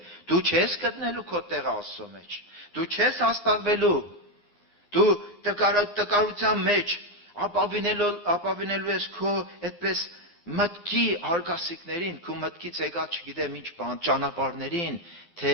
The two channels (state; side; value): late; right; 9.7 ms